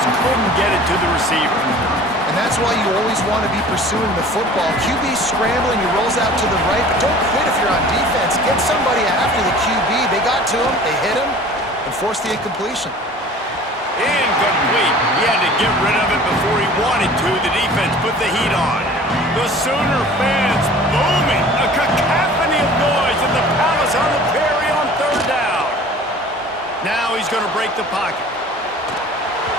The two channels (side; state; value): both; normal; correlation 0.45